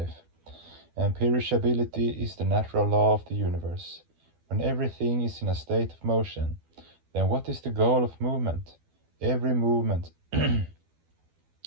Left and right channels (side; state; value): left; late; 12 ms